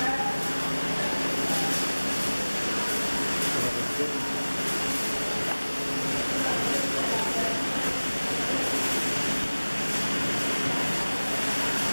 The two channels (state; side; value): inverted; both; correlation -1.00